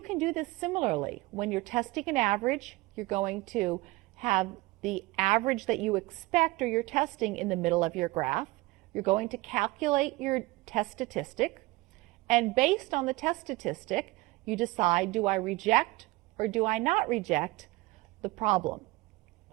do this similarly. When you're testing an average, you're going to have the average that you expect or you're testing in the middle of your graph. You're going to calculate your test statistic, and based on the test statistic, you decide, do I reject or do I not reject the problem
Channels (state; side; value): quieter; left; 21.5 dB